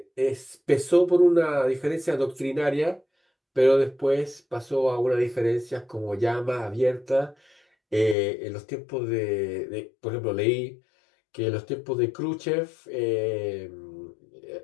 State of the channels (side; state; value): right; drops out; at 8.2 s